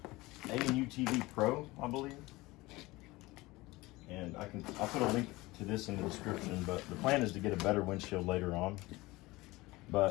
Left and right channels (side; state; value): right; quieter; 20.8 dB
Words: A&U TV Pro, I believe. And I'll put a link to this in the description, but the plan is to get a better windshield later on.